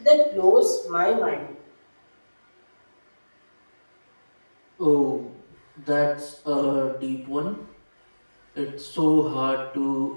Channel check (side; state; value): both; inverted; correlation -1.00